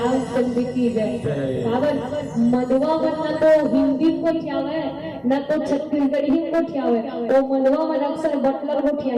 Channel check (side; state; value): both; identical; correlation 1.00